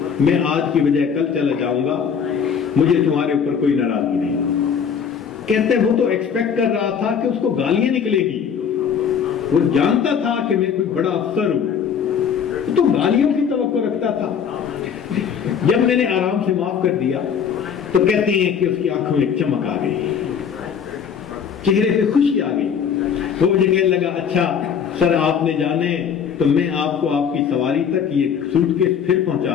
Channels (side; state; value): right; quieter; 7.3 dB